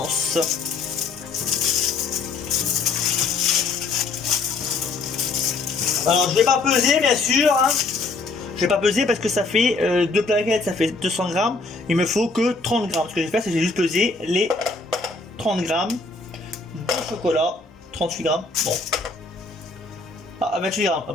Alors je vais pas peser bien sûr. Hein. Je vais pas peser parce que ça fait deux plaquettes, ça fait 200 grammes. Il me faut que 30 grammes. Ce que je vais faire, c'est que j'ai juste pesé les 30 grammes de chocolat. 38 grammes. Bon. Ah, 28 grammes. Ah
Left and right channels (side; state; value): right; quieter; 3.9 dB